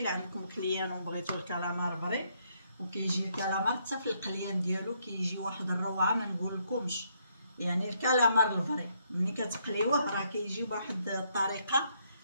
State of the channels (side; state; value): both; inverted; correlation -0.73